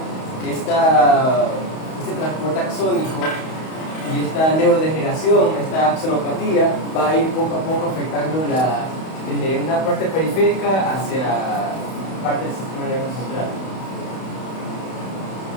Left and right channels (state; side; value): late; right; 31 ms